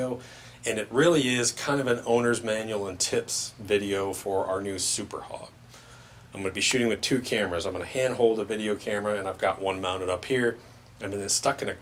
and it really is kind of an owner's manual and tips video for our new Super Hog. I'm going to be shooting with two cameras. I'm going to hand hold a video camera, and I've got one mounted up here, and then it's stuck in a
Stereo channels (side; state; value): both; identical; correlation 1.00